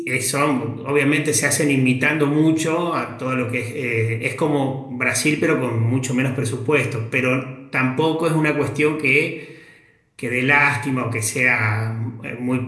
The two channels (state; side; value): identical; both; correlation 1.00